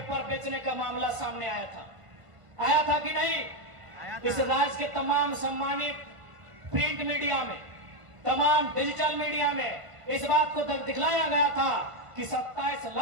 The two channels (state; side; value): late; left; 1.5 ms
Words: बेचने का मामला सामने आया था कि नहीं? इस राज्य के तमाम सम्मानित प्रिंट मीडिया में, तमाम डिजिटल मीडिया में इस बात को दिखलाया गया था कि 27